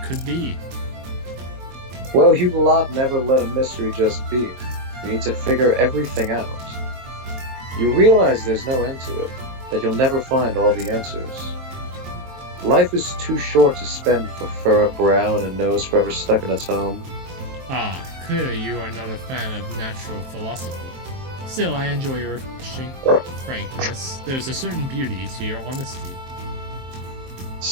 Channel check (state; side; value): late; left; 23 ms